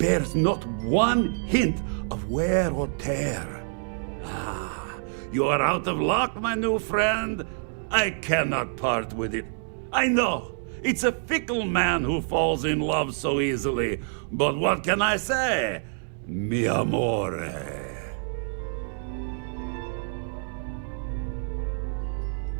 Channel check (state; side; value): silent; left; 60 dB below the other